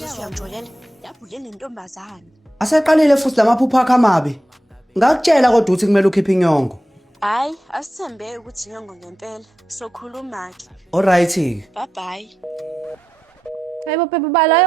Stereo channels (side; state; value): both; normal; correlation 0.90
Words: siyamjolela yabhule nentombazana. Aseqalile futhi lamaphupho akho amabi. Ngakutshela kodwa ukuthi kumele ukhiphe inyongo. Hayi asithembe ukuthi inyongo ngempela sokhuluma ke. Alright. Bye bye. Hayibo babe bala